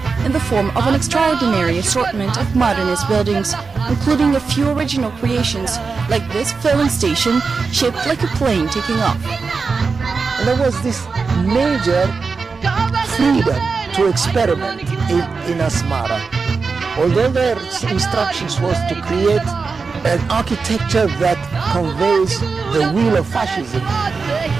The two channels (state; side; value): quieter; left; 4.7 dB